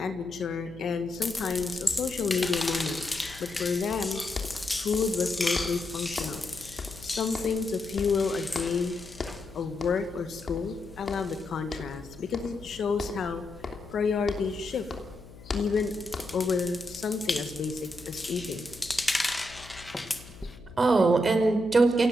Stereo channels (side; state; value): left; noise; hum, 19 dB below the sound